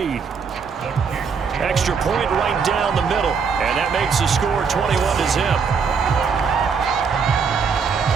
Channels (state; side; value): quieter; left; 5.8 dB